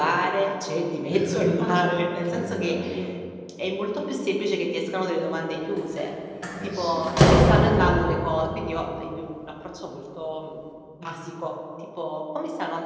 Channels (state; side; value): identical; both; correlation 1.00